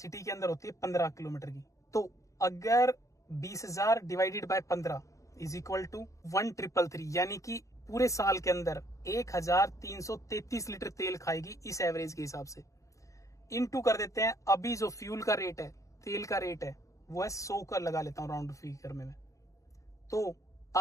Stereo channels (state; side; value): late; right; 0.15 ms